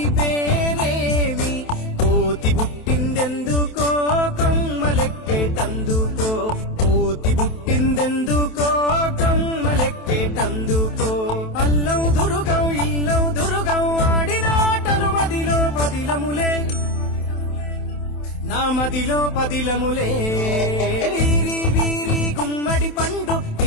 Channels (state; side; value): late; right; 27 ms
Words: పేరేమి, కోతి పుట్టిందెందుకో కొమ్మలెక్కేటందుకో, కోతి పుట్టిందెందుకో కొమ్మలెక్కేటందుకో, అల్లం దురుగం ఇల్లం దురుగం ఆడిన ఆటలు మదిలో పదిలములే, నా మదిలో పదిలములే. వీరి వీరి గుమ్మడి పండు